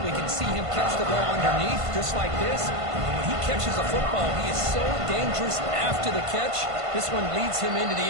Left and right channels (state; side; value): late; left; 1.5 ms